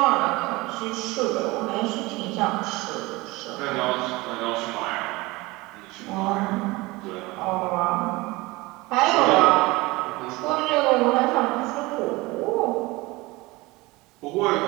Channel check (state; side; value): quieter; left; 22.1 dB